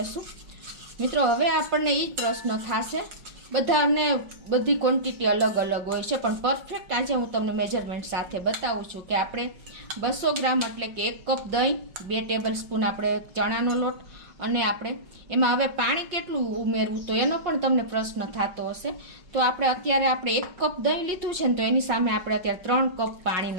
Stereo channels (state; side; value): late; left; 5.6 ms